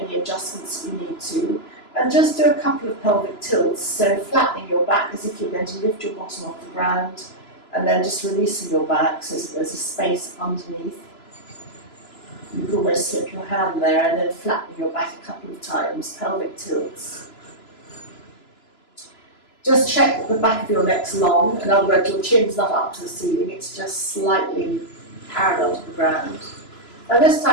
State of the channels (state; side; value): late; right; 3.0 ms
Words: adjustments you need to, and just do a couple of pelvic tilts. So flattening your back as if you're going to lift your bottom off the ground, and then just releasing your back so that there's a space underneath. You can almost slip your hand there, and then flatten your back a couple of times, pelvic tilts. Just check that the back of your neck's long, in other words, your chin's not up to the ceiling, it's just slightly parallel to the ground. And this